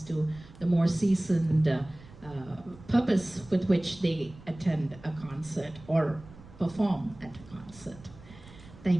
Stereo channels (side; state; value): right; noise; rumble, 20 dB below the sound